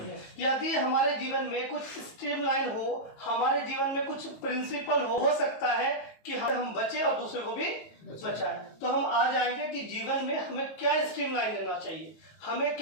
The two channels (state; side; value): late; right; 18 ms